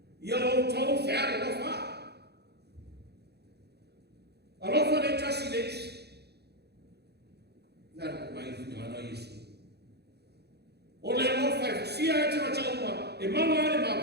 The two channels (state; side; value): late; left; 0.48 ms